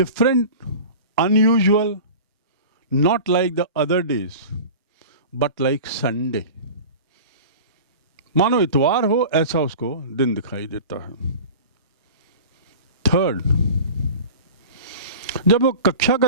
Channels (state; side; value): inverted; both; correlation -0.36